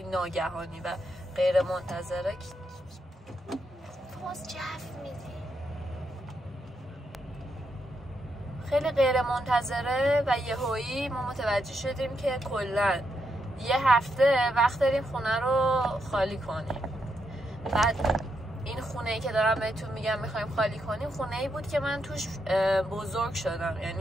ناگهانی و غیر منتظره. باز جف میدی، خیلی غیر منتظره و یهویی ما متوجه شدیم که کلا یه هفته وقت داریم خونه رو خالی کنیم. بعد این خونه‌ای که دارم بهتون میگم میخوایم خالی کنیم خونه‌ای بود که من توش بزرگ شدم،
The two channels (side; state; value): both; normal; correlation 0.81